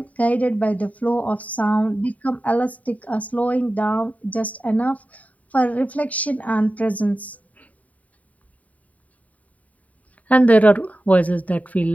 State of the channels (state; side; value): late; right; 0.070 ms